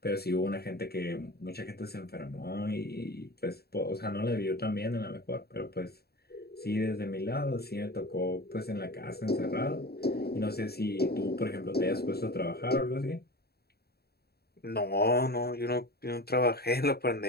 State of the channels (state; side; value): late; right; 0.46 ms